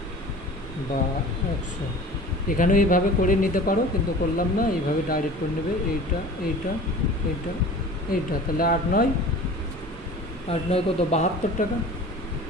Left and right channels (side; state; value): both; normal; correlation 0.41